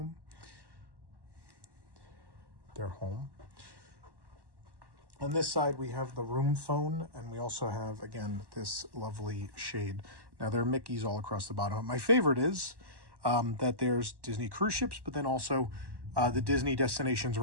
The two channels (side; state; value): left; late; 1.1 ms